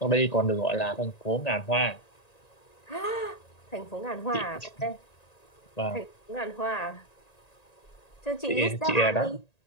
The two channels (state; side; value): late; right; 1.9 ms